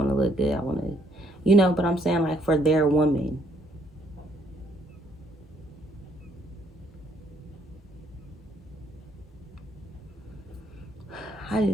to look good. I want to, but I'm saying, like, for their woman. I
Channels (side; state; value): both; normal; correlation 0.68